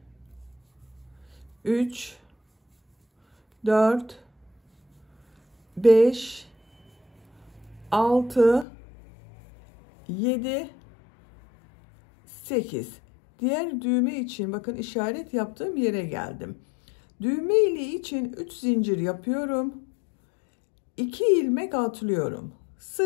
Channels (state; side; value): drops out; right; at 8.7 s